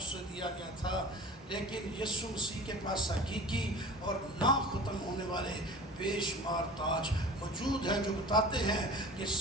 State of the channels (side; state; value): both; normal; correlation 0.39